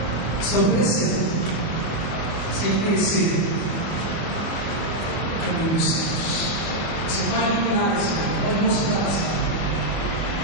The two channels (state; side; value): late; right; 24 ms